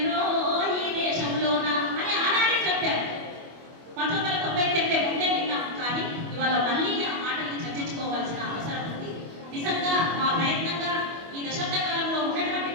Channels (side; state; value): left; late; 25 ms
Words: ఈ దేశంలోన అని ఆనాడే చెప్పారు. 1990 కంటే ముందే విన్నాం. కానీ ఇవాళ మళ్ళీ ఆ మాటల్ని చర్చించుకోవాల్సిన అవసరం ఉంది. నిజంగా మా ప్రయత్నంగా ఈ దశాబ్ద కాలంలో ఉన్నటువంటి